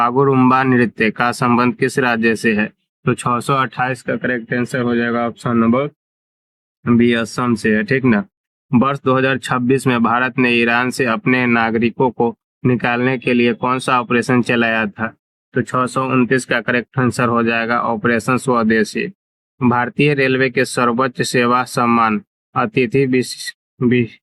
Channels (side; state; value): both; identical; correlation 1.00